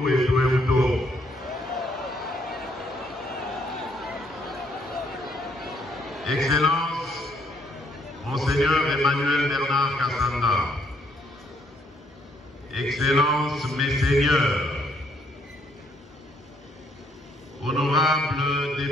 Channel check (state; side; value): normal; both; correlation 0.69